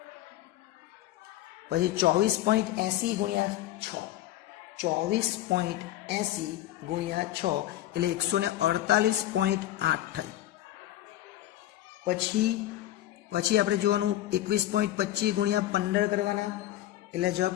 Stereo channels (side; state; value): right; quieter; 13.9 dB